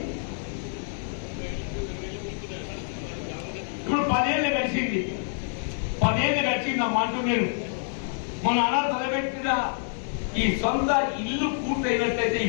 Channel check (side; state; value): right; silent; 60 dB below the other